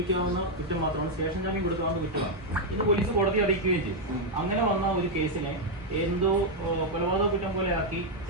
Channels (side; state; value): both; normal; correlation 0.00